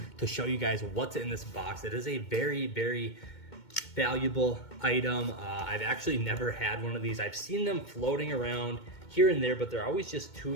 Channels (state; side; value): late; right; 2.2 ms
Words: to show you guys what's in this box. It is a very, very valuable item. I've actually never had one of these. I've seen them floating around here and there, but they're always just too